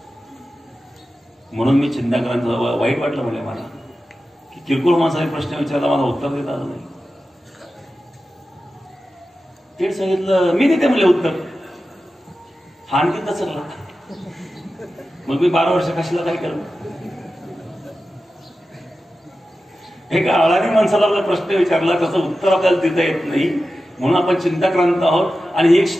म्हणून मी चिंताक्रांत वाईट वाटलं म्हणले मला, की किरकोळ माणसाने प्रश्न विचारला, मला उत्तर देता आलं नाही. ते सांगितलं, मी देते म्हणले उत्तर. हा आणखी दचकला. मग मी 12 वर्ष कशाला काय केलं. एका अळानी माणसाला आपला प्रश्न विचारला, त्याचं उत्तर आपल्याला देता येत नाही, म्हणून आपण चिंताक्रांत आहोत. आणि एक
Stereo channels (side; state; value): both; normal; correlation 0.93